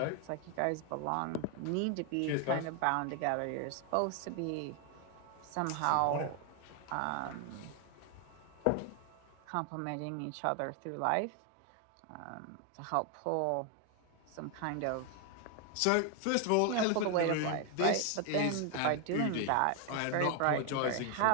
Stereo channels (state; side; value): different; both; correlation 0.01